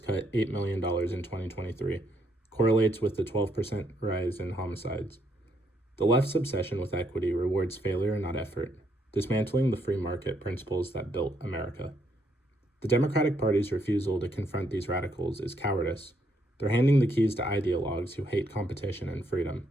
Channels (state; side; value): normal; both; correlation 0.74